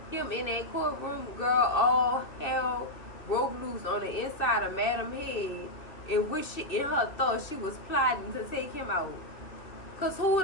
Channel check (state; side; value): late; right; 2.7 ms